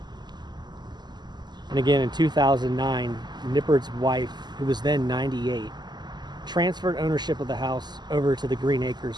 And again, in 2009, Nippert's wife, who was then 98, transferred ownership of the house over to the Green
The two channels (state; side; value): late; left; 0.21 ms